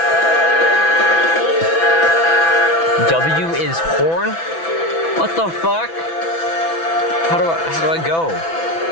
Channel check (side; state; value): right; late; 6.0 ms